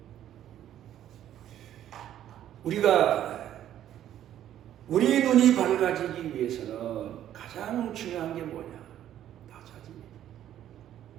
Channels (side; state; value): left; quieter; 11.4 dB